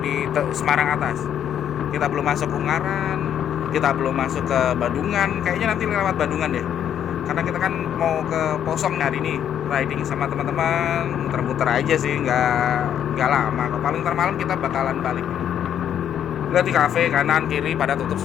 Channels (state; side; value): quieter; right; 9.6 dB